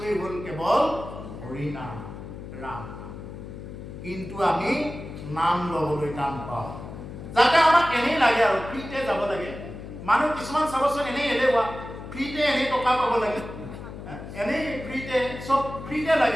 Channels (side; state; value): left; noise; hum, 11 dB below the sound